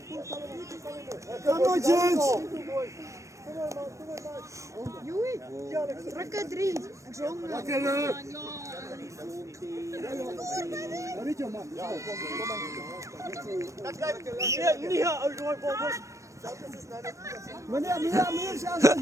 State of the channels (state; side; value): late; left; 0.15 ms